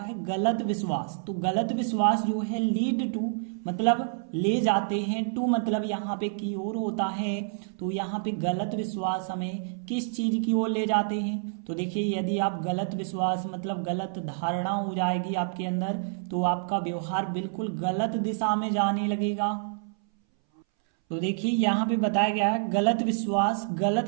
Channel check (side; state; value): left; silent; 59 dB below the other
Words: गलत विश्वास। तो गलत विश्वास जो है लीड टू मतलब ले जाते हैं, टू मतलब यहाँ पे की ओर होता है। तो यहाँ पे गलत विश्वास हमें किस चीज की ओर ले जाते हैं। तो देखिए यदि आप गलत विश्वास मतलब गलत धारणा हो जाएगी आपके अंदर, तो आपका व्यवहार बिल्कुल गलत दिशा में जाने लगेगा। तो देखिए यहाँ पे बताया गया है गलत विश्वास गलत